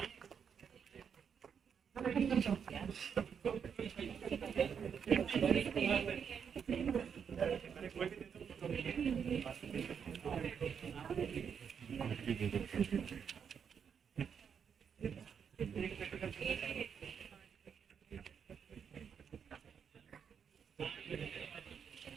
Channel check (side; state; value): left; quieter; 7.2 dB